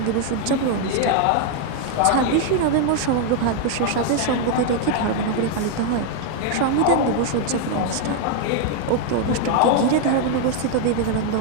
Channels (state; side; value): different; both; correlation 0.00